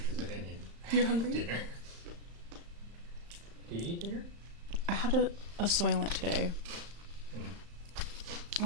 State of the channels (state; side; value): late; left; 35 ms